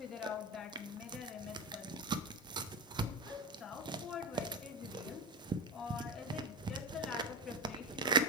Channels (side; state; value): both; normal; correlation 0.18